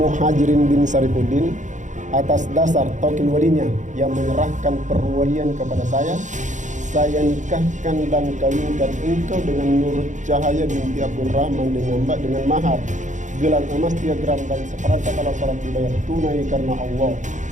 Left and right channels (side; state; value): left; late; 0.36 ms